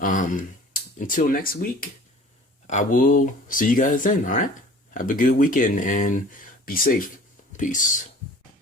next week, I will see you guys then. All right, have a good weekend and be safe. Peace.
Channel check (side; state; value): both; normal; correlation 0.46